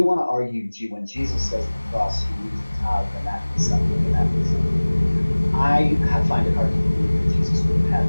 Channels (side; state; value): both; inverted; correlation -1.00